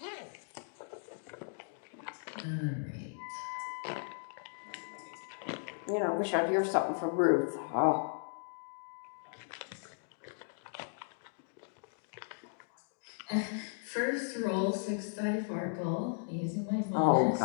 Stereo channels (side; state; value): right; silent; digital silence